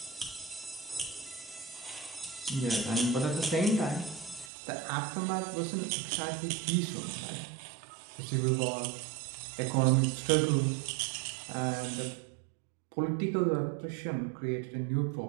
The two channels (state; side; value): drops out; left; at 4.5 s